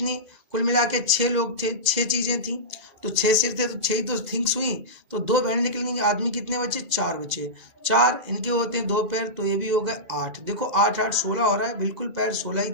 कुल मिला के 6 लोग थे, 6 चीज़ें थी, तो 6 सिर थे तो 6 ही तो थिंग्स हुई। तो 2 भेड़ें निकलेंगी, आदमी कितने बचे? 4 बचे। 4 इनके होते हैं 2 पैर, तो ये भी हो गए 8। देखो 8 8 16 हो रहा है, बिल्कुल पैर 16 ही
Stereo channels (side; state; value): left; late; 2.0 ms